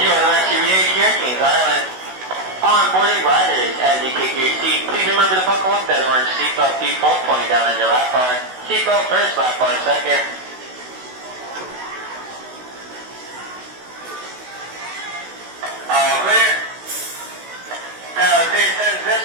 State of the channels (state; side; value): late; left; 16 ms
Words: the rest of your day here at Kings Island. Onboarding riders, as you kick your seat, please remember to buckle up that orange seatbelt default pointing down on your lap bar. Seatbelt first, lap bar second. All